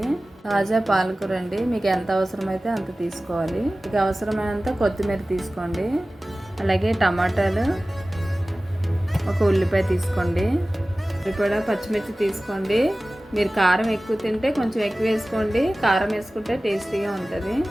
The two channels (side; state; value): both; normal; correlation 0.97